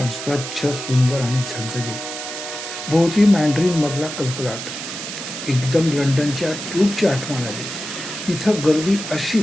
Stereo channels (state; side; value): noise; right; hiss, 8 dB below the sound